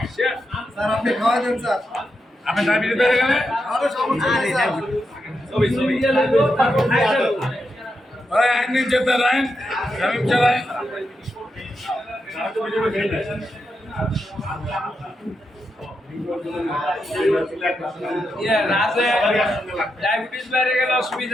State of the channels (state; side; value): normal; both; correlation 0.86